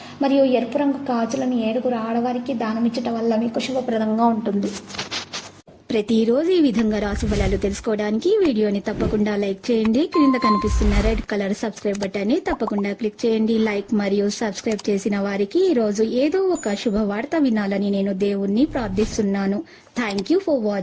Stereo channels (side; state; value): both; identical; correlation 1.00